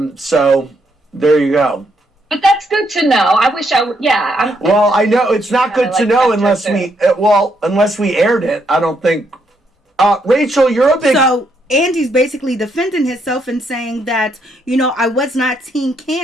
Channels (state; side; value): normal; both; correlation 0.75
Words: so there you go. But that's good to know. I wish I would. Yeah. Well, I know it's not good to know unless we aired it. I don't think. Rachel, you're a big. So Andy's basically defending himself and saying that, I was not Team